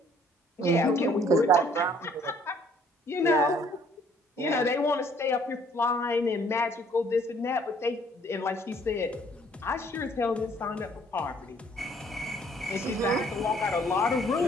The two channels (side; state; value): both; normal; correlation 0.61